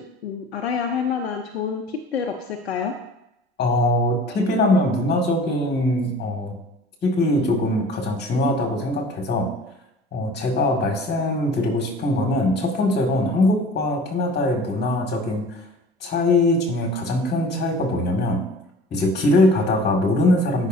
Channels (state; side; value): normal; both; correlation 0.44